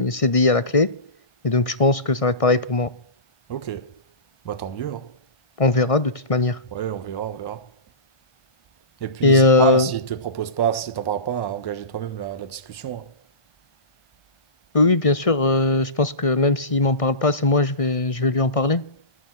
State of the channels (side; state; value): right; late; 1.1 ms